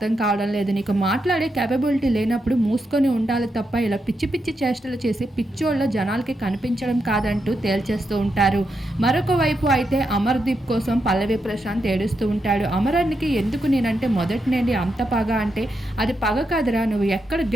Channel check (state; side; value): normal; both; correlation 0.84